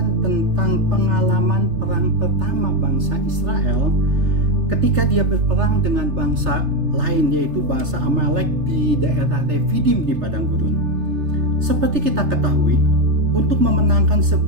tentang pengalaman perang pertama bangsa Israel ketika dia berperang dengan bangsa lain, yaitu bangsa Amalek di daerah Refidim di padang gurun. Seperti kita ketahui, untuk memenangkan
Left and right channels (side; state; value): left; late; 3.3 ms